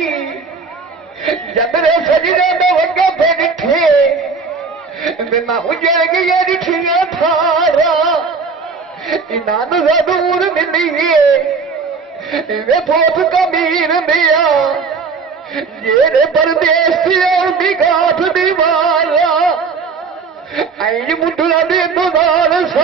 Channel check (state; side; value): quieter; left; 4.9 dB